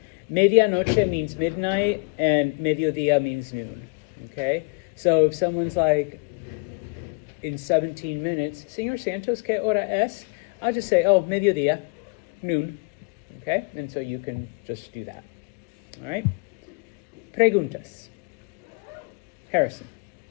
medianoche means midnight and mediodía means noon, okay? So if someone's like, in 17 minutes, Señor Santos, ¿qué hora es? I'll just say, mediodía, noon, okay? And so you can just do that, all right? Preguntas. Harrison.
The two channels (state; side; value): quieter; right; 32.6 dB